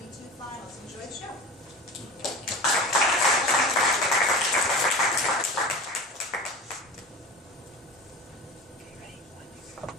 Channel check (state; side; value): normal; both; correlation 0.33